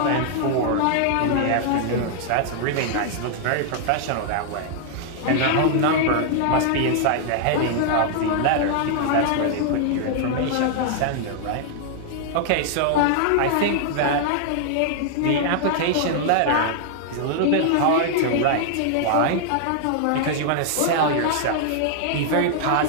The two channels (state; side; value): different; both; correlation -0.01